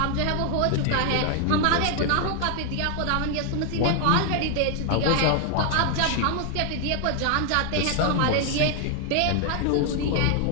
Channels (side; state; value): both; different; correlation 0.00